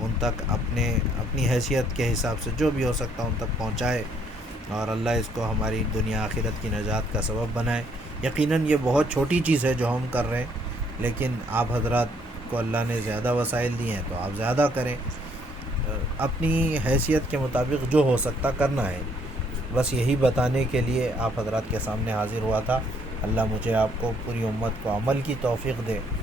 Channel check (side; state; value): both; normal; correlation 0.67